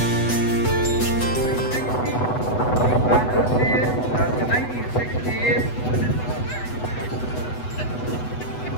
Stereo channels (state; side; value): late; right; 8.1 ms